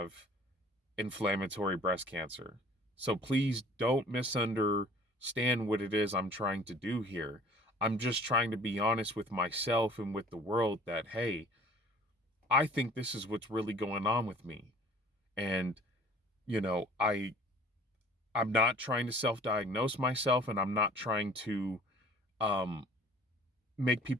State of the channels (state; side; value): normal; both; correlation 0.51